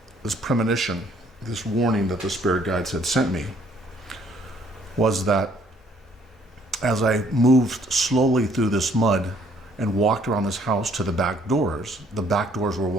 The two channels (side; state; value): both; normal; correlation 0.63